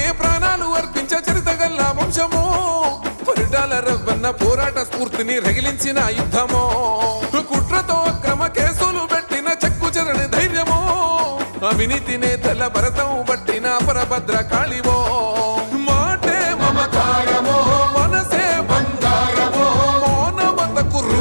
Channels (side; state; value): both; inverted; correlation -1.00